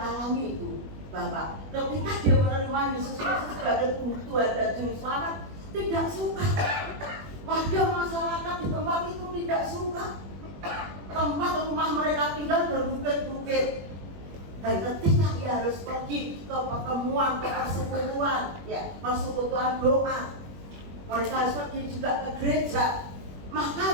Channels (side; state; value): left; late; 21 ms